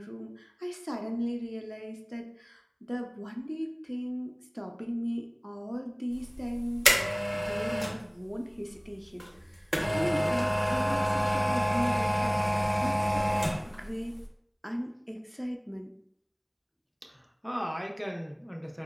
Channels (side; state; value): both; identical; correlation 1.00